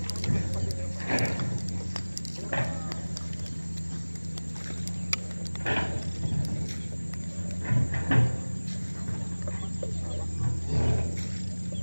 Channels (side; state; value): both; inverted; correlation -1.00